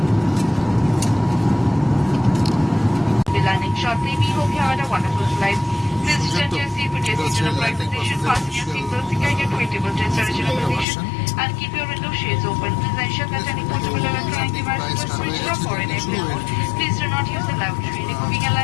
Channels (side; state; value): right; drops out; at 10.9 s